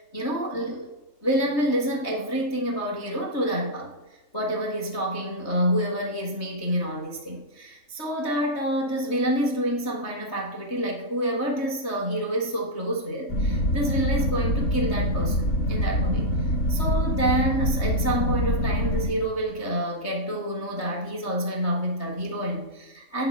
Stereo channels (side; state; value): right; late; 3.2 ms